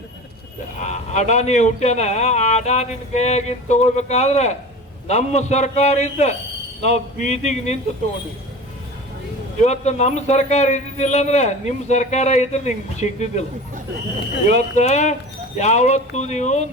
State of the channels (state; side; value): normal; both; correlation 0.35